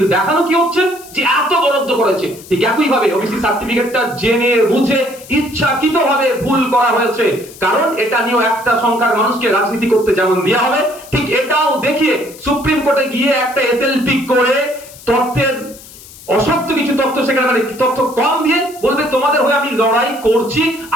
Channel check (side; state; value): left; noise; hiss, 19 dB below the sound